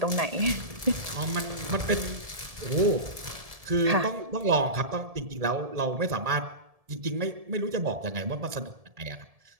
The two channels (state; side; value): late; left; 1.7 ms